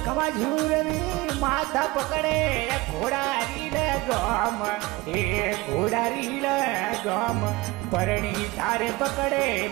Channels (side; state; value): left; quieter; 20.9 dB